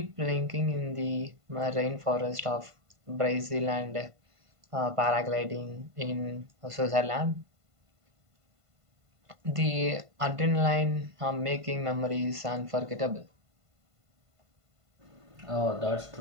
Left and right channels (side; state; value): left; late; 1.5 ms